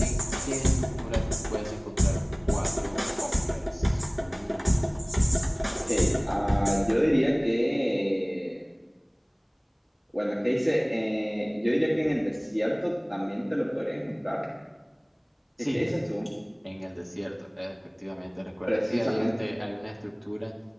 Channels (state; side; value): identical; both; correlation 1.00